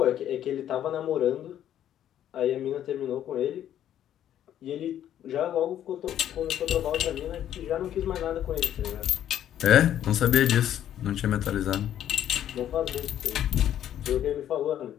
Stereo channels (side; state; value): right; quieter; 11.0 dB